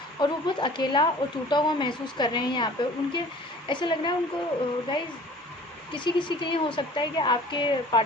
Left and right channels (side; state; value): both; normal; correlation 0.47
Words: और वो बहुत अकेला और टूटा हुआ महसूस कर रहे हैं। यहाँ पे उनके ऐसा लग रहा है उनको गाइज़, किसी किसी के लिए हो सकता है कि आपके